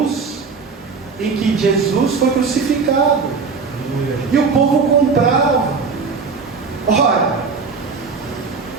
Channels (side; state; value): left; quieter; 5.0 dB